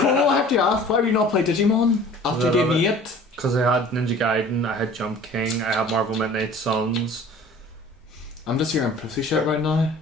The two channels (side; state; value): both; normal; correlation 0.46